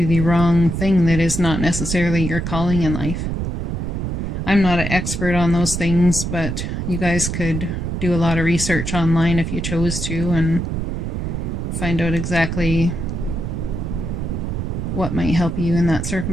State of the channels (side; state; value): right; noise; rumble, 3 dB below the sound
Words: the wrong thing that is not necessarily your calling in life. I'm not an expert on those things, but you guys could do a lot of research online if you chose to and find out exactly what might help you in that